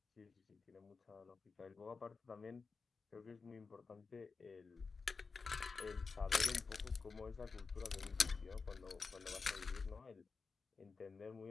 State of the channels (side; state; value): right; quieter; 4.6 dB